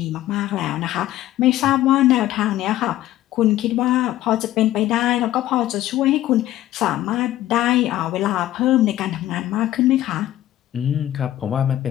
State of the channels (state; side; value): quieter; right; 14.0 dB